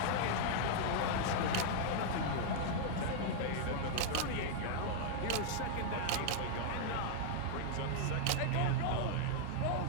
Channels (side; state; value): both; different; correlation -0.01